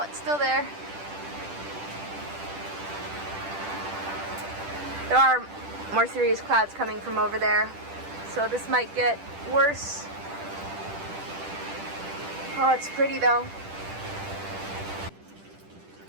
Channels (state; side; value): late; left; 10 ms